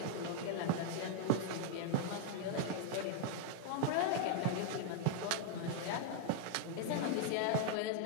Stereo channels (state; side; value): different; both; correlation 0.00